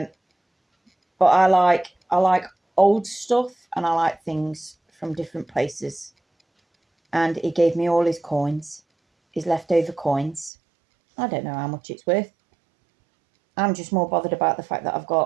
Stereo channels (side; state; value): left; drops out; at 10.5 s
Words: I like old stuff and I like things from different places. And he gave me all his coins, his leftover coins. I don't know how much it's worth. I'm just more bothered about the fact that I've